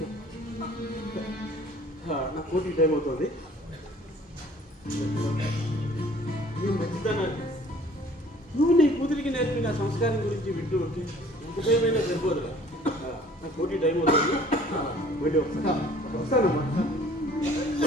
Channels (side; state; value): both; normal; correlation 0.52